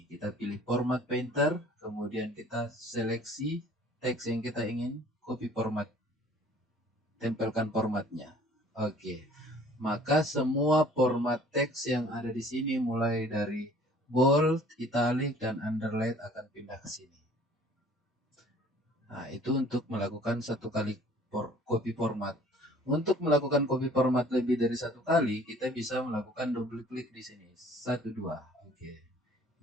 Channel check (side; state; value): both; normal; correlation 0.53